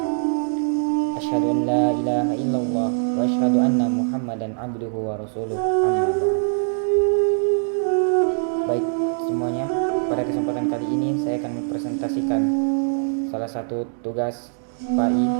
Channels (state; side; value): silent; left; digital silence